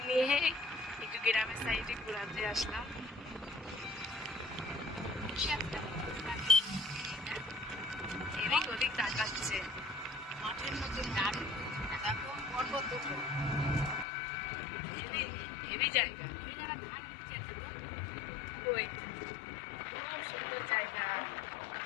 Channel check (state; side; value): drops out; right; at 14.1 s